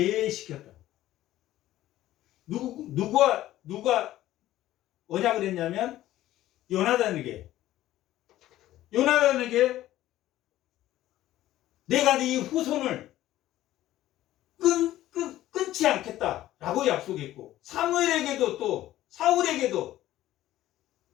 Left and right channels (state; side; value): quieter; right; 14.4 dB